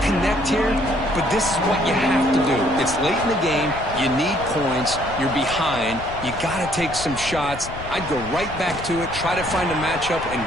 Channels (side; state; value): left; noise; rumble, 12 dB below the sound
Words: connect here, but this is what you have to do. It's late in the game. You need points. You're behind. You got to take some shots. I'd go right back to it, try to find a matchup, and